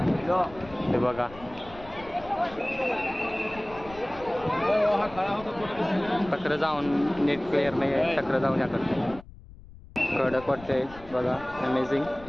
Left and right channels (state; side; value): noise; left; rumble, 19 dB below the sound